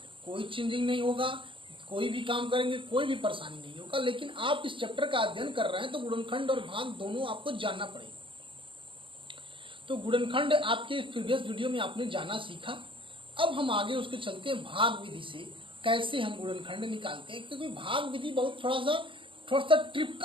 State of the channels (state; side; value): late; left; 0.25 ms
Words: कोई चेंजिंग नहीं होगा, कोई भी काम करेंगे कोई भी परेशानी नहीं होगा। लेकिन आप इस चैप्टर का अध्ययन कर रहे हैं तो गुणनखंड और भाग दोनों आपको जानना पड़ेगा। तो गुणनखंड आपके प्रीवियस वीडियो में आपने जाना सीखा। अब हम आगे उसके चलते हैं भाग विधि से कैसे हम गुणनखंड निकालते हैं, क्योंकि भाग विधि बहुत थोड़ा सा